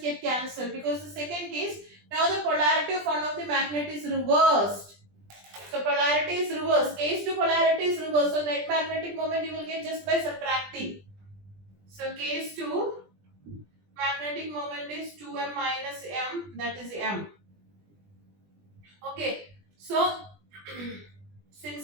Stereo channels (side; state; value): left; late; 20 ms